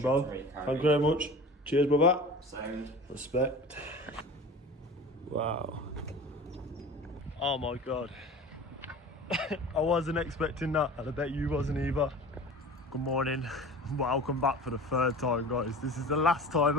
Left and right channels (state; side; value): normal; both; correlation 0.38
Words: bro. Thank you very much. Cheers, brother. Sound. Respect. Wow. Oh my god. I wasn't expecting that, and I bet you wasn't either. Good morning. Welcome back for the third time, guys. This is the last